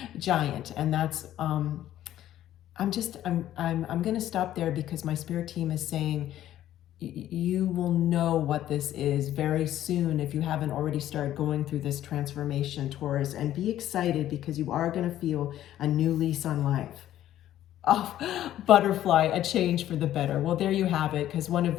giant. And that's I'm going to stop there because my spirit team is saying you will know what this is very soon if you haven't already started going through this transformation, Taurus, and be excited because you are going to feel a new lease on life. Oh, butterfly, a change for the better. Well, there you have it, because one of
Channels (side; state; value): right; quieter; 12.6 dB